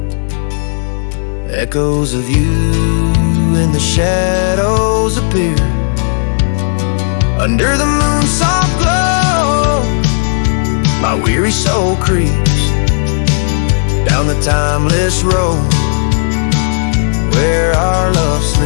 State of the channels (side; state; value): right; silent; digital silence